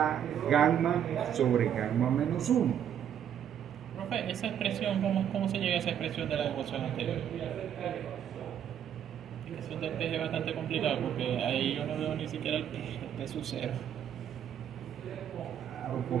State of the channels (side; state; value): left; quieter; 9.4 dB